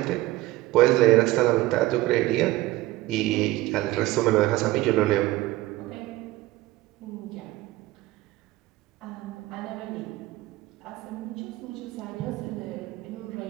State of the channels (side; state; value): left; quieter; 17.5 dB